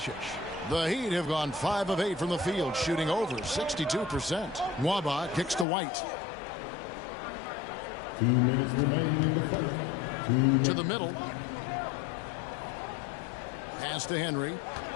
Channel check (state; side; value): drops out; right; at 5.7 s